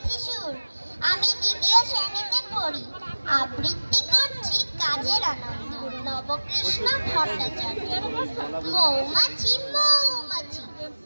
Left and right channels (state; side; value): inverted; both; correlation -1.00